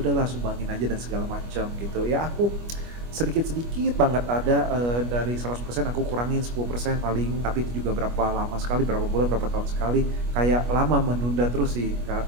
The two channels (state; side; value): late; left; 25 ms